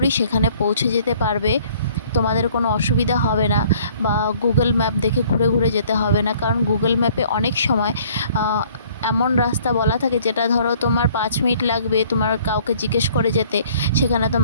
সেখানে পৌঁছে যেতে পারবে। তোমাদের কোনো অসুবিধা হবে না, বা গুগল ম্যাপ দেখে ঘুরে ঘুরে যেতে হবে না, কারণ গুগল ম্যাপে অনেক সময় এমন রাস্তা বলা থাকে যেটা ধরো তোমার 5 মিনিট লাগবে তোমার কাউকে জিজ্ঞেস করে যেতে, সেখানে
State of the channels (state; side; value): inverted; both; correlation -0.57